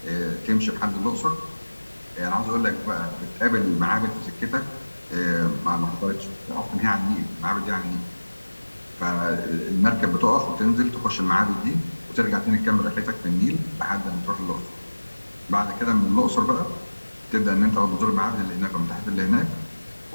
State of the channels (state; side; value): inverted; both; correlation -1.00